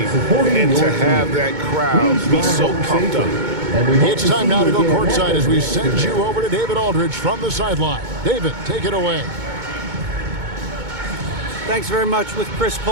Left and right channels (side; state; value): left; late; 2.2 ms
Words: and to have that crowd be so pumped up. It's time now to go courtside as we send you over to David Aldridge from the sideline. David, take it away. Thanks very much with Chris